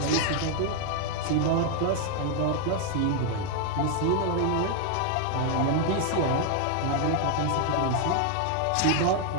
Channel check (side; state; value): both; different; correlation 0.00